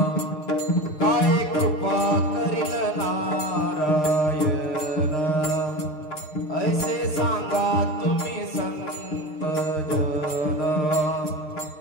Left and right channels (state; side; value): late; right; 6.5 ms